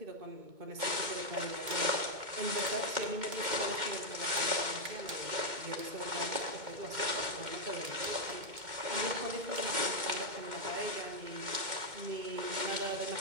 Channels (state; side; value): late; left; 2.1 ms